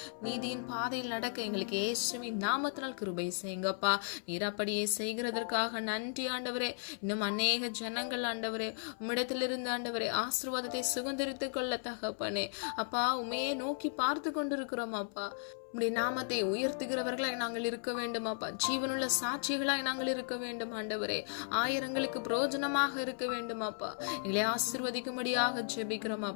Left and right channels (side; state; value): right; silent; 54 dB below the other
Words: நீதியின் பாதையில் நடக்க எங்களுக்கு இயேசுவின் நாமத்தினால் கிருபை செய்யுங்கப்பா. நீர் அப்படியே செய்கிறதற்காக நன்றி ஆண்டவரே. இன்னும் அநேக ஜனங்கள் ஆண்டவரே உம்மிடத்திலிருந்து ஆண்டவரே ஆசீர்வாதத்தை சுதந்திரித்துக் கொள்ள தகப்பனே. அப்பா, உமையே நோக்கி பார்த்து கொண்டிருக்கிறோம் அப்பா. உம்முடைய நாமத்தை உயர்த்துகிறவர்களாய் நாங்கள் இருக்க வேண்டும் அப்பா. ஜீவனுள்ள சாட்சிகளாய் நாங்கள் இருக்க வேண்டும் ஆண்டவரே. ஆயிரங்களுக்கு பிரயோஜனமாக இருக்க வேண்டும் அப்பா. எங்களை ஆசீர்வதிக்கும்படியாக ஜெபிக்கிறோம்